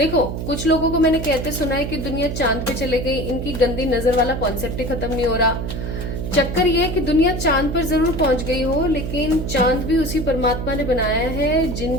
कुछ लोगों को मैंने कहते सुना है कि दुनिया चांद पे चले गई, इनकी गंदी नजर वाला कॉन्सेप्ट ही खत्म नहीं हो रहा। चक्कर ये है कि दुनिया चांद पर जरूर पहुंच गई हो, लेकिन चांद भी उसी परमात्मा ने बनाया है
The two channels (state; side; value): noise; right; hum, 5 dB below the sound